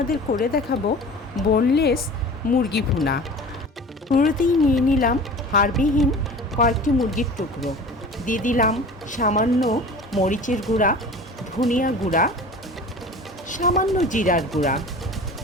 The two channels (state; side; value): normal; both; correlation 0.39